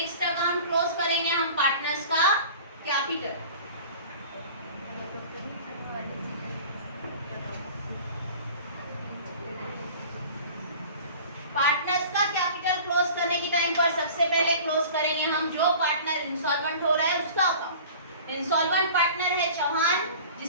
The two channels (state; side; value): inverted; both; correlation -0.42